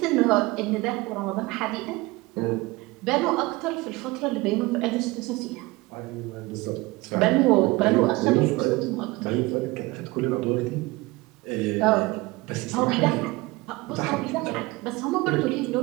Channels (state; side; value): quieter; left; 21.9 dB